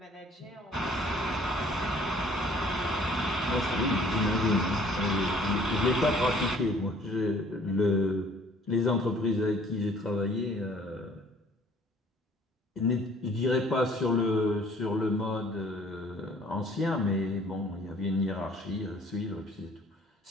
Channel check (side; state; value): both; normal; correlation 0.56